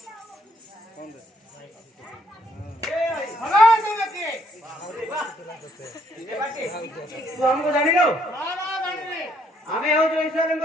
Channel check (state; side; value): normal; both; correlation 0.69